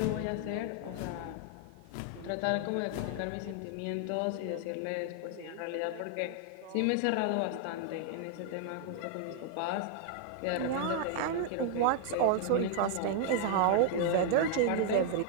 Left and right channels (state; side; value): different; both; correlation 0.00